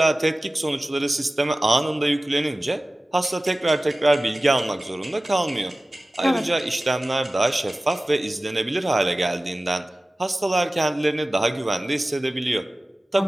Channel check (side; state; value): both; normal; correlation 0.97